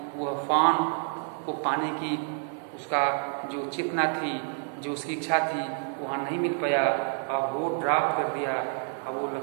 वह फान को पाने की उसका जो चेतना थी, जो उसकी इच्छा थी, वहाँ नहीं मिल पाया। अब वो ड्रॉप कर दिया अब वो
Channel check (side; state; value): left; silent; 59 dB below the other